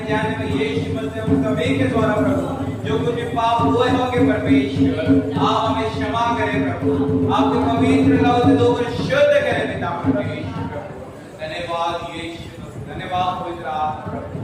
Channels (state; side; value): identical; both; correlation 1.00